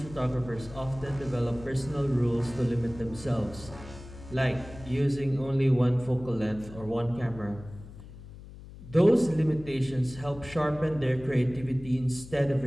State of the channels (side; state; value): left; noise; hum, 16 dB below the sound